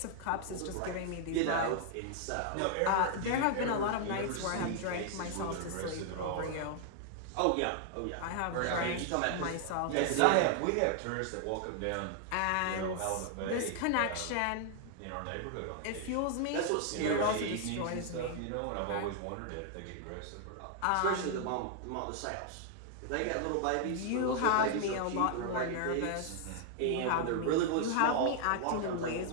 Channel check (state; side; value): different; both; correlation 0.00